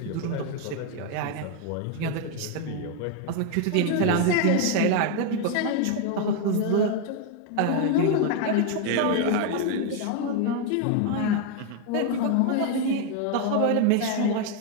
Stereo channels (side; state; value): both; different; correlation 0.01